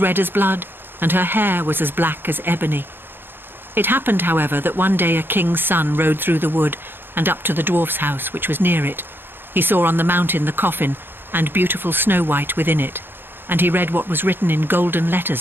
as blood, and her hair was as black as ebony. It happened, however, that one day a king's son rode through the wood and up to the dwarf's house, which was near it. He saw on the mountain the coffin, and beautiful Snow White within it. and he read what was written in golden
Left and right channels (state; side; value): late; left; 0.10 ms